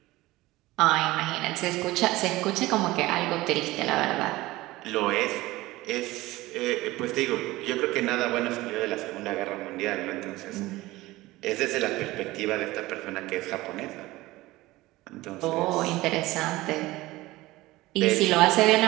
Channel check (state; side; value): quieter; left; 18.8 dB